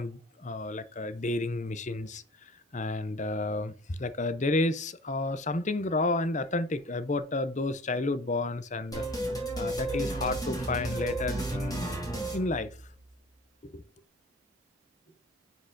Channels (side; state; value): both; normal; correlation 0.45